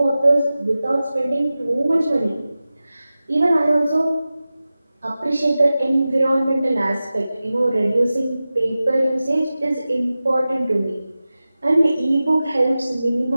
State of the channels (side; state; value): both; inverted; correlation -0.95